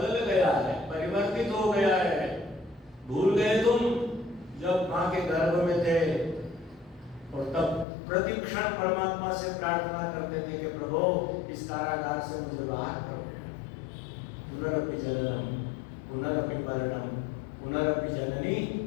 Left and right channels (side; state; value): right; drops out; at 7.9 s